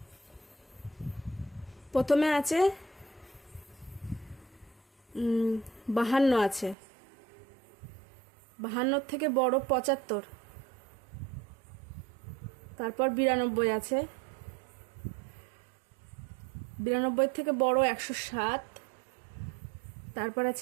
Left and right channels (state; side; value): drops out; left; at 6.8 s